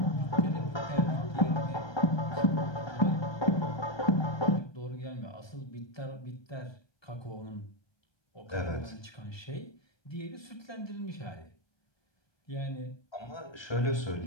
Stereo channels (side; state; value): right; late; 1.2 ms